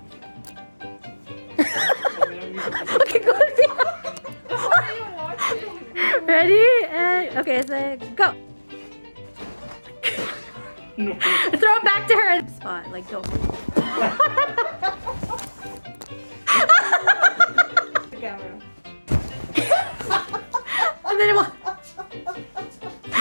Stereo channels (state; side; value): inverted; both; correlation -1.00